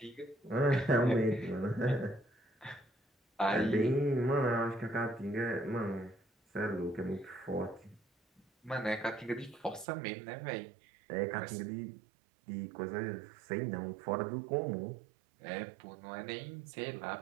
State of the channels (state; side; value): drops out; left; at 9.9 s